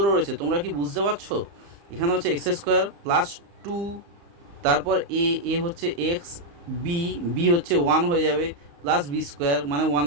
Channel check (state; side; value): late; left; 35 ms